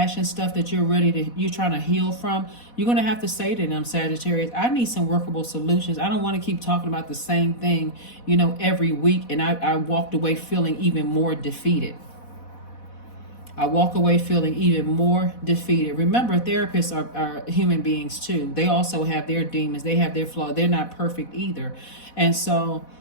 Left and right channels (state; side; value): late; right; 4.1 ms